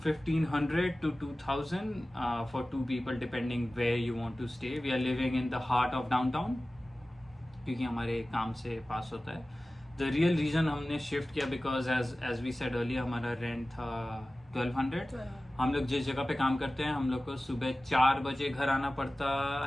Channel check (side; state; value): both; normal; correlation 0.97